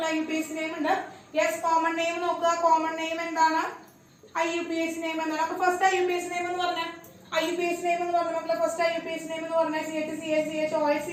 IUPAC നെയിം ഉണ്ട്. യെസ് കോമൺ നെയിം നോക്കുക, കോമൺ നെയിം എന്താണ്, IUPAC നെയിം എന്താണ്. അപ്പൊ ഫസ്റ്റ് IUPAC നെയിം എന്ന് പറഞ്ഞാൽ മക്കളെ ഫസ്റ്റ് IUPAC നെയിം എന്ന് പറഞ്ഞാൽ CH CH CHOH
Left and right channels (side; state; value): both; identical; correlation 1.00